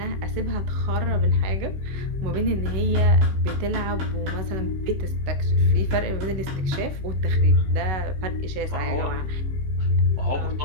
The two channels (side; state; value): left; late; 16 ms